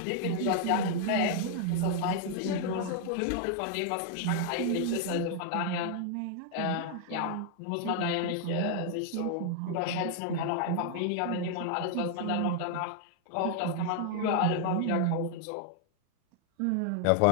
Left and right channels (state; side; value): different; both; correlation -0.01